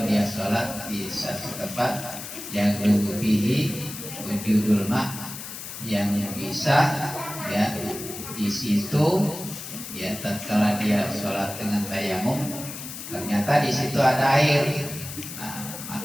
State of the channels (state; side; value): noise; left; hiss, 10 dB below the sound